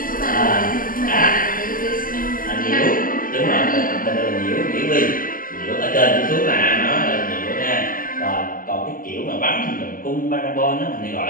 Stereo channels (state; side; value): late; right; 0.41 ms